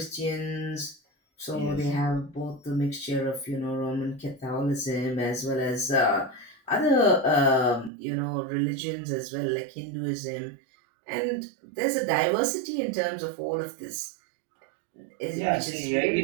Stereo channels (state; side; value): drops out; left; at 7.9 s